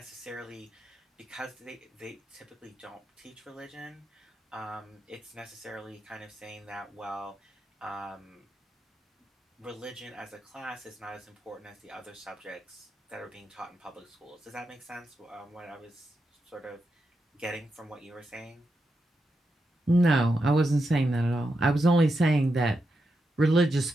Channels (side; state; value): both; normal; correlation 0.86